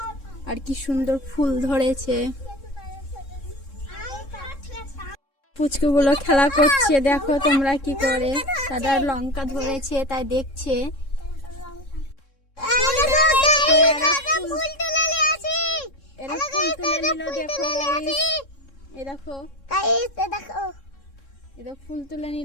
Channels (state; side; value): late; right; 3.7 ms